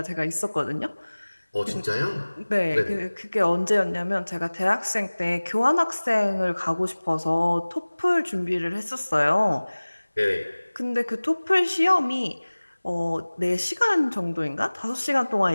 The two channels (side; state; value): both; inverted; correlation -1.00